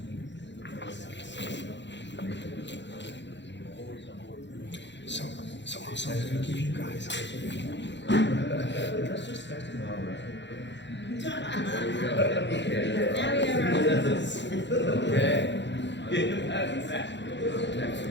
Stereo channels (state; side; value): late; right; 0.52 ms